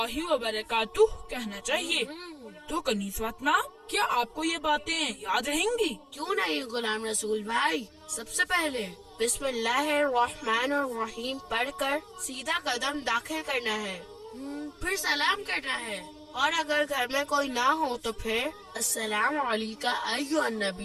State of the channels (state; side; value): identical; both; correlation 1.00